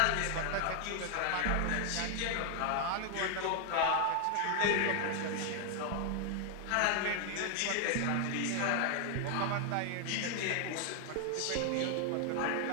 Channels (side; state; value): both; different; correlation 0.00